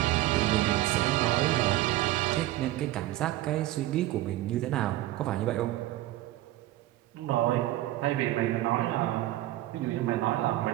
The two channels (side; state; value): left; quieter; 15.8 dB